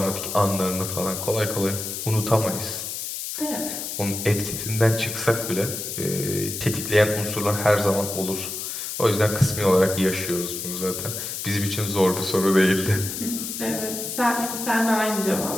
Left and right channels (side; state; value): left; noise; hiss, 5 dB below the sound